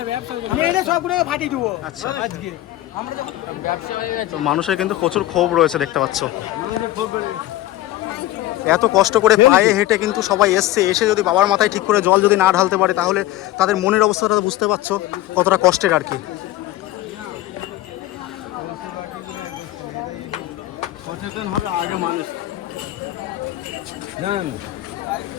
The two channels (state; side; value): quieter; right; 15.3 dB